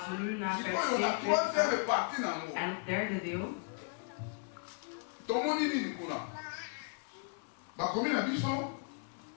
we nu naar vers 42 gaan, en het derde deel. Tomoni nini kuna. Bakomi na biso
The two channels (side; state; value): right; quieter; 39.9 dB